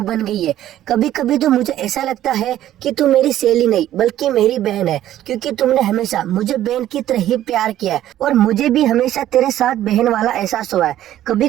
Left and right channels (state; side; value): quieter; left; 12.7 dB